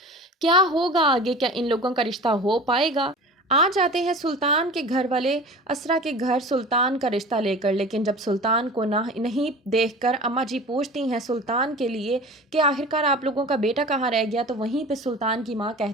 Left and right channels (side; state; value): both; normal; correlation 0.38